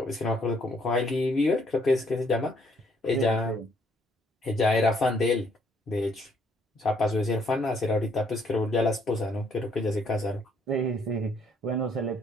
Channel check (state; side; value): normal; both; correlation 0.68